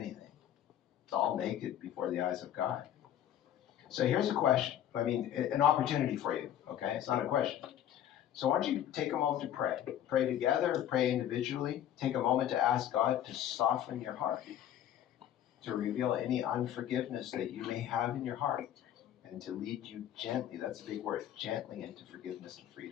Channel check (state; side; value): quieter; right; 11.0 dB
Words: It's all naked before the eyes of God. So here's a question. I mean, an opportunity for you, okay? It's not a question. So why don't you take a moment to pray. Pray together, pray individually. Take a moment to ask God to soften your heart, to reveal any unforgiveness that you may have in your heart, and to lead you gently, that's a big word, gently into forgiveness and